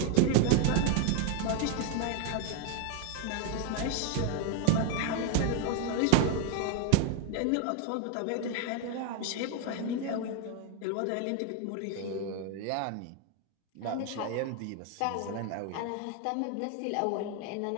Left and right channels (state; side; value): different; both; correlation 0.01